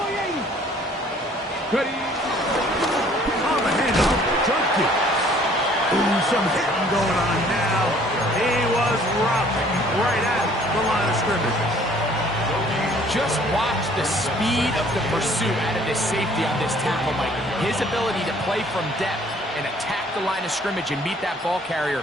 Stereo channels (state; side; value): normal; both; correlation 0.57